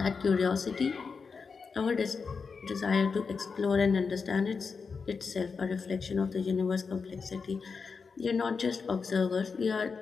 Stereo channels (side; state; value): right; quieter; 5.2 dB